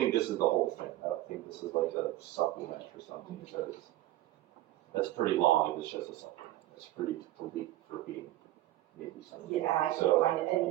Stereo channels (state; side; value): quieter; left; 15.7 dB